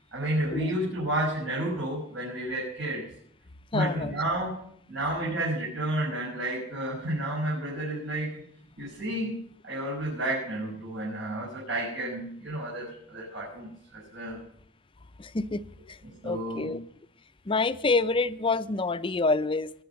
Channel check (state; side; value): normal; both; correlation 0.34